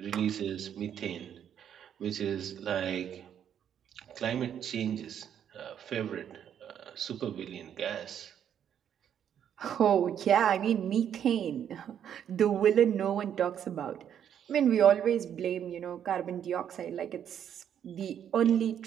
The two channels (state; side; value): quieter; left; 9.2 dB